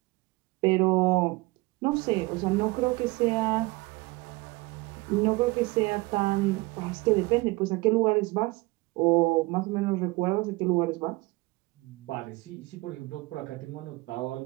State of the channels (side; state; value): left; quieter; 23.2 dB